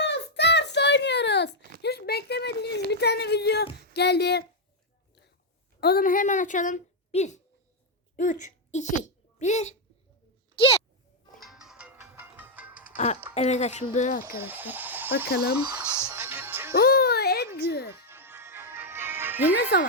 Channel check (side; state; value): both; normal; correlation -0.01